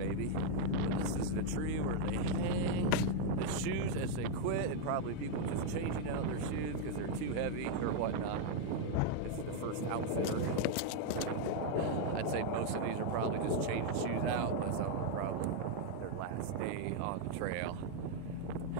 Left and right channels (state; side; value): different; both; correlation 0.00